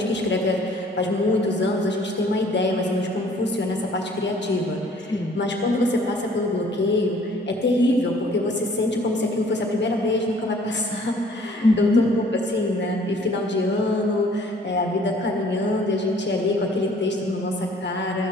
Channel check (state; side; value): normal; both; correlation 0.56